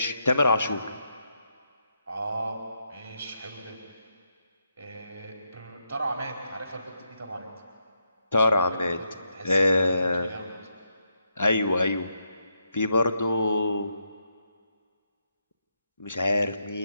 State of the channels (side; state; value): both; inverted; correlation -0.81